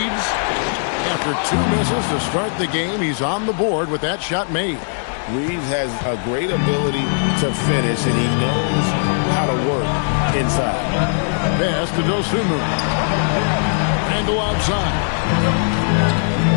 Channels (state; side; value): silent; right; digital silence